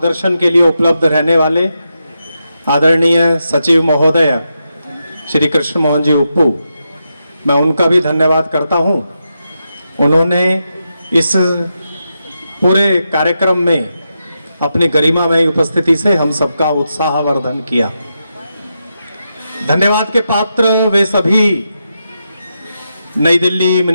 के लिए उपलब्ध रहने वाले आदरणीय सचिव महोदय श्री कृष्ण मोहन जी उप्पू, मैं उनका भी धन्यवाद करता हूं। उन्होंने इस पूरे कार्यक्रम में अपनी गरिमामय उपस्थिति से हम सबका उत्साहवर्धन किया। धन्यवाद के पात्र वे सभी नई दिल्ली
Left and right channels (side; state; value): both; inverted; correlation -0.86